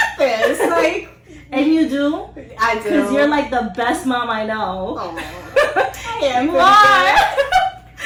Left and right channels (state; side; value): identical; both; correlation 1.00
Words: this. Like, and you do? I do. Because you're like the best mom I know. Oh, I am. You are.